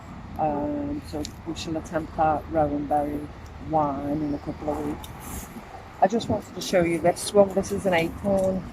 So we shall attempt that rowan berry wine in a couple of weeks. I just wanted to show you this one. This is an acorn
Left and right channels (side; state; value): both; identical; correlation 1.00